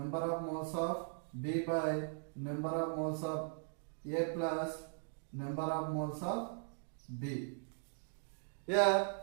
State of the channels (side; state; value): left; silent; digital silence